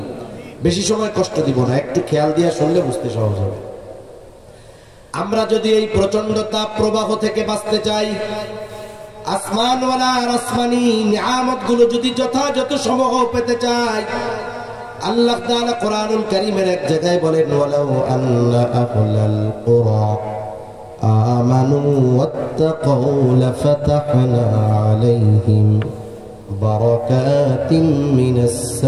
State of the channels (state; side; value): identical; both; correlation 1.00